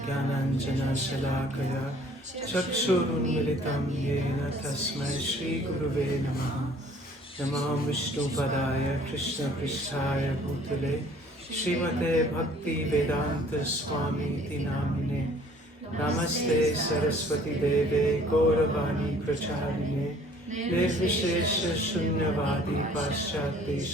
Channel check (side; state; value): both; normal; correlation 0.55